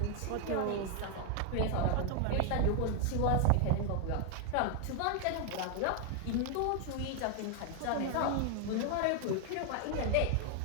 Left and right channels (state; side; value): different; both; correlation 0.00